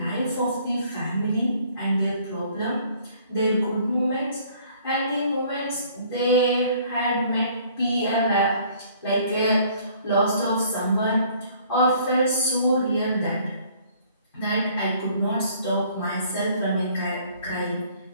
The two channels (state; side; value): inverted; both; correlation -0.58